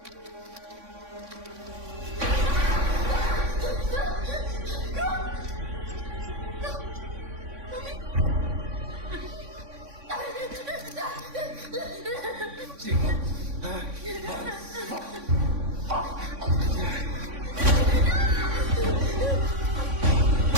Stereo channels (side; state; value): left; late; 3.6 ms